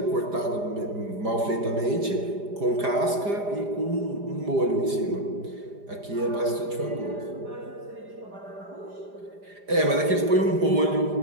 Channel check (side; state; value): left; late; 4.9 ms